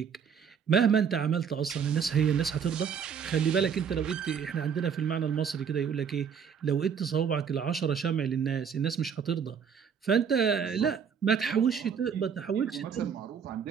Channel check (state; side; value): quieter; left; 7.0 dB